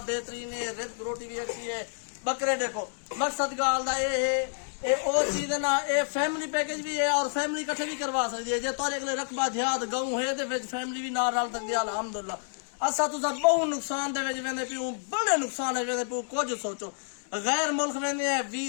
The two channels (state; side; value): silent; right; 59 dB below the other